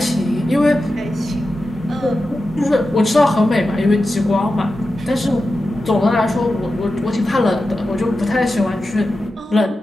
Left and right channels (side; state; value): both; normal; correlation 0.92